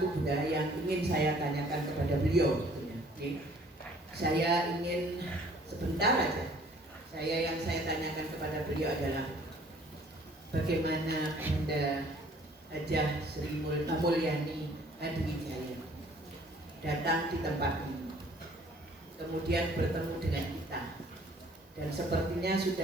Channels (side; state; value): both; normal; correlation 0.56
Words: Bunda yang ingin saya tanyakan kepada beliau. Okay. Saya ingin sebentar aja. Yang saya tanyakan kepada beliau adalah bagaimana Bunda Hajah Sri Mulyani Hadiwijaya datang di tempat ini, kemudian bertemu dengan kita, dan sepertinya